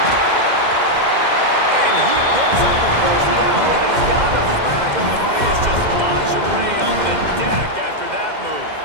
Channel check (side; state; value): left; late; 2.1 ms